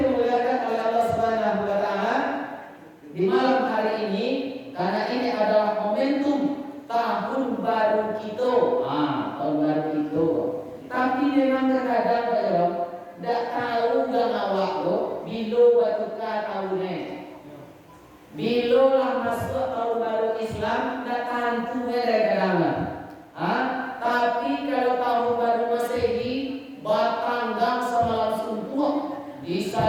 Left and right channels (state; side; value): identical; both; correlation 1.00